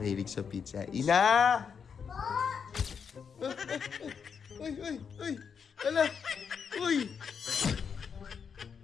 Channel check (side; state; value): right; quieter; 6.6 dB